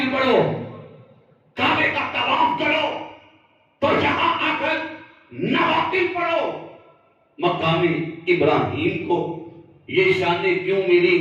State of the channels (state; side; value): identical; both; correlation 1.00